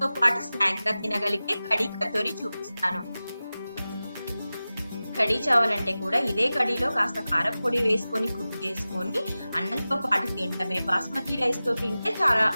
పాటు స్నాక్ గా తినగలిగే కడీ కచోరీ చూపిస్తాను. కడీ చావాలంటే కూడా ఇదే కడీలో కాస్త కారపొడి వేసుకొని కుక్ చేసుకొని అన్నంతో పాటు తినడమే. బాస్మతి రైస్ తో తింటే చాలా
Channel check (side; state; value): both; inverted; correlation -0.96